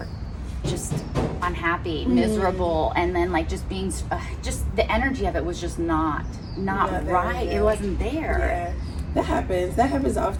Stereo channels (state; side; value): identical; both; correlation 1.00